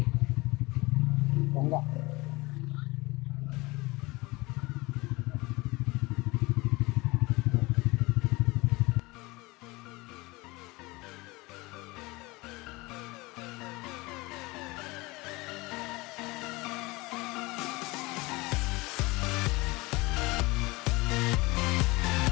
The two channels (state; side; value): quieter; right; 23.1 dB